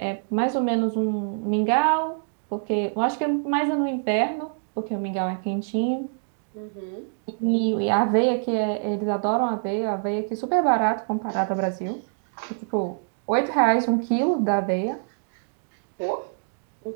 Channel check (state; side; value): silent; left; digital silence